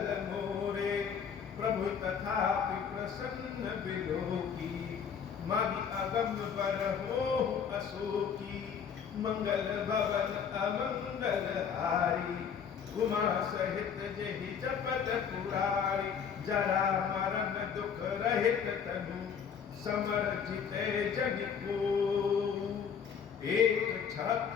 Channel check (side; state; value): right; quieter; 7.2 dB